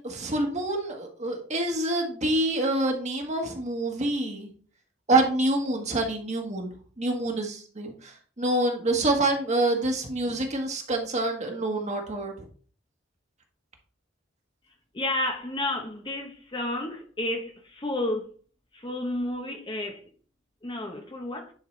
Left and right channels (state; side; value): normal; both; correlation 0.31